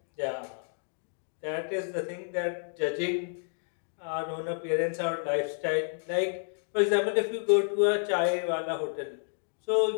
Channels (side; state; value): right; silent; 58 dB below the other